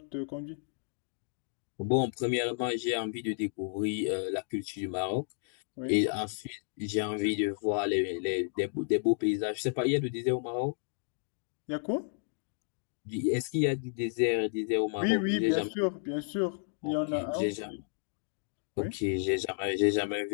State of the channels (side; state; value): right; silent; digital silence